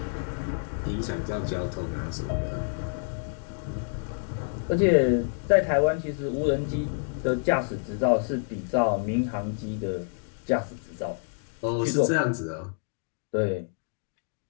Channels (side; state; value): right; silent; digital silence